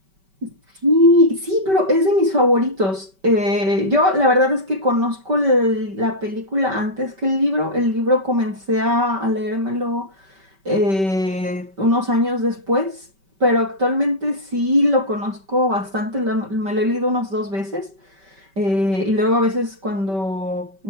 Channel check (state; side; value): late; left; 5.2 ms